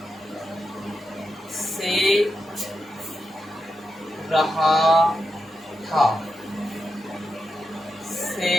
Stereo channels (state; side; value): normal; both; correlation 0.88